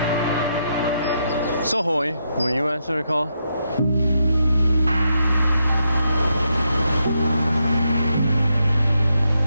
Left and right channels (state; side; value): inverted; both; correlation -0.81